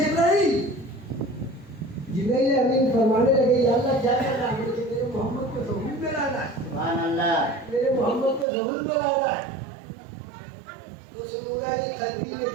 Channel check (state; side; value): drops out; left; at 8.5 s